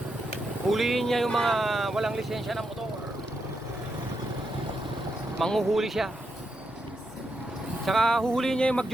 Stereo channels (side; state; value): both; normal; correlation 0.83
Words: Huliin niya yung mga walang lisensya ng motor. Manghuhuli siya. Tsaka huhuliin niya yung